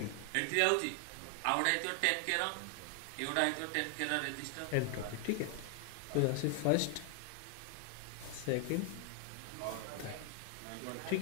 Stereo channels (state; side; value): different; both; correlation 0.00